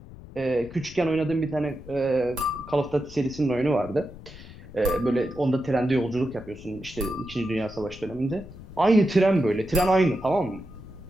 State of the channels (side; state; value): left; noise; rumble, 17 dB below the sound